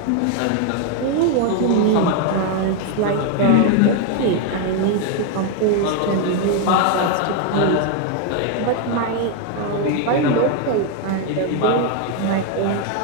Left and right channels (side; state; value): both; different; correlation 0.01